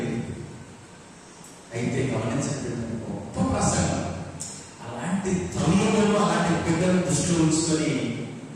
అయితే గమనించండి, గొప్ప ప్రసంగం అలాంటి తల్లులను అలాంటి బిడ్డలను దృష్టిలో ఉంచుకొని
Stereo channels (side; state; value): both; identical; correlation 1.00